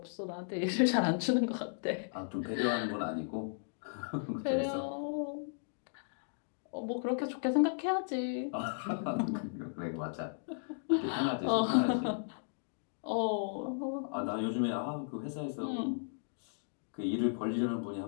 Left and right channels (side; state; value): right; silent; digital silence